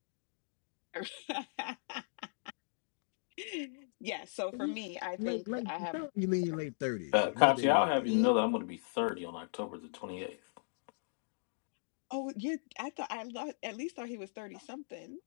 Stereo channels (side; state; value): right; silent; digital silence